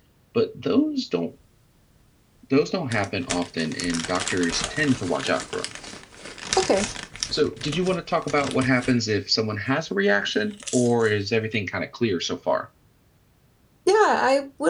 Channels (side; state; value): both; identical; correlation 1.00